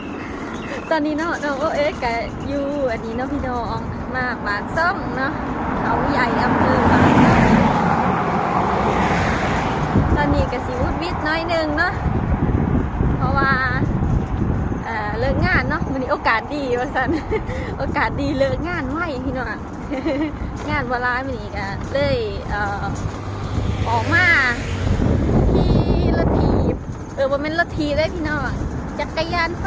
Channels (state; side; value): identical; both; correlation 1.00